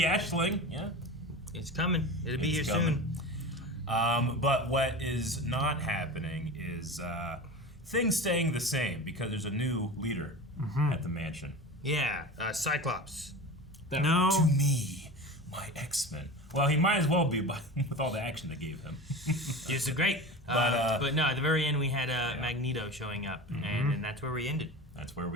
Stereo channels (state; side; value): normal; both; correlation 0.31